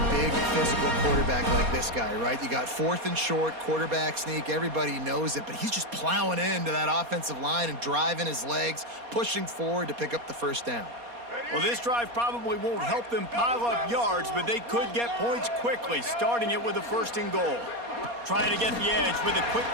big physical quarterback like this guy, right? You got 4th and short, quarterback sneak, everybody knows it, but he's just plowing into that offensive line and driving his legs, pushing forward to pick up the first down. Well, this drive probably won't help them pile up yards, but they could get points quickly, starting it with a 1st and goal. Trying to get the edge with a quick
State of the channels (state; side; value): late; left; 4.2 ms